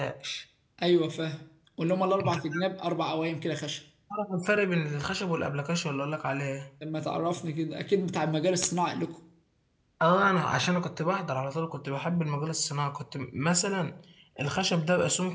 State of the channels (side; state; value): both; identical; correlation 1.00